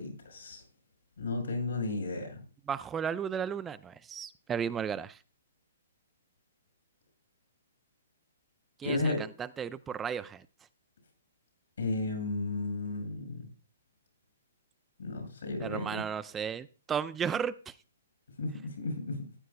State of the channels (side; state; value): both; normal; correlation -0.05